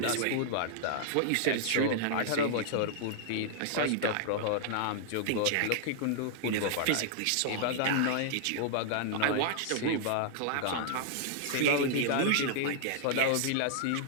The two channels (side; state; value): both; different; correlation -0.01